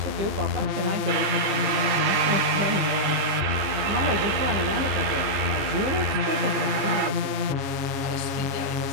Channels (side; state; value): left; late; 15 ms